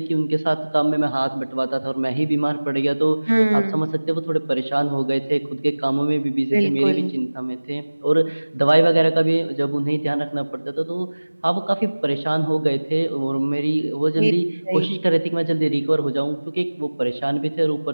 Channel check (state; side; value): inverted; both; correlation -1.00